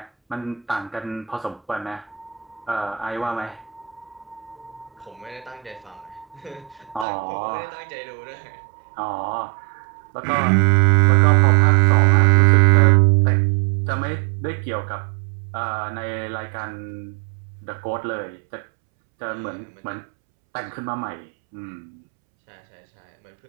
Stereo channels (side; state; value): left; drops out; at 7.1 s